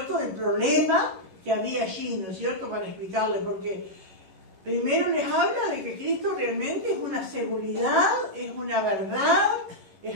del problema que había allí, ¿no es cierto?, para explicarle, porque primero les habla de que Cristo realmente es una seguridad, es una verdad, es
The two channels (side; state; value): left; late; 11 ms